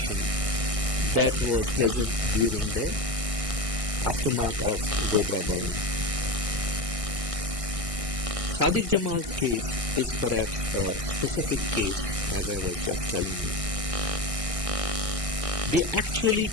that was present during the aftermath of Godhra burning. Sadiq Jamal's case is perhaps a specific case, as I was just telling you. They actually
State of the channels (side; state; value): left; late; 1.6 ms